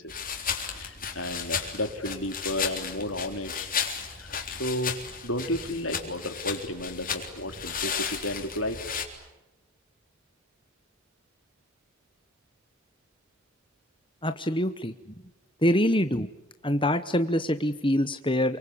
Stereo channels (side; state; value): both; normal; correlation 0.40